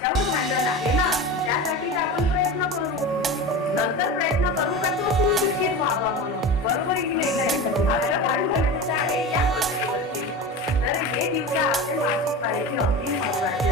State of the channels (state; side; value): normal; both; correlation 0.29